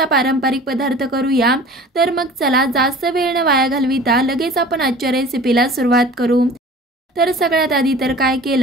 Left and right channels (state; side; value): normal; both; correlation 0.43